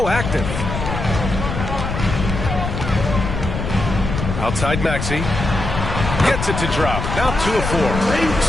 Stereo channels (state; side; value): noise; left; rumble, 4 dB below the sound